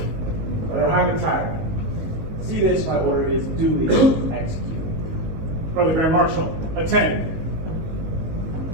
Brother Hiram tired. See this, my order is duly executed. Brother Grand Marshal, attend.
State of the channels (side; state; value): left; late; 19 ms